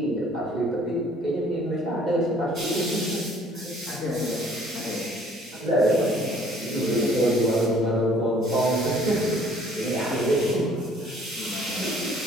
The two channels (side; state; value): both; normal; correlation 0.58